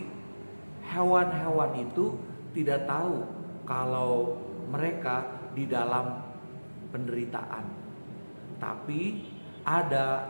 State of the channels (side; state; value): both; inverted; correlation -1.00